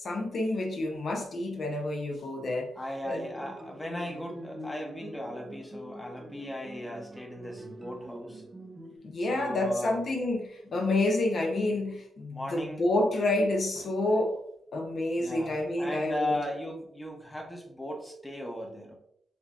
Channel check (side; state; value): both; normal; correlation 0.83